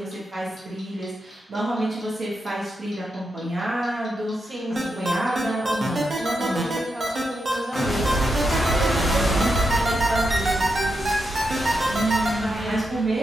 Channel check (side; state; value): both; normal; correlation 0.85